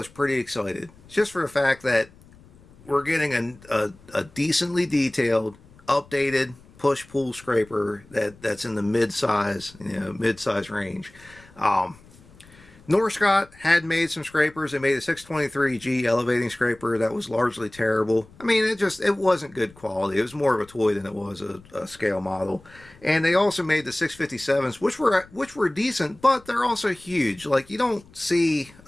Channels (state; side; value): noise; left; rumble, 25 dB below the sound